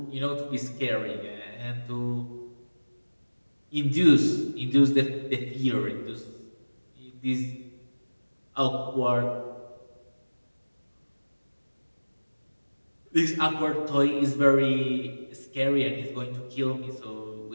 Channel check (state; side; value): inverted; both; correlation -1.00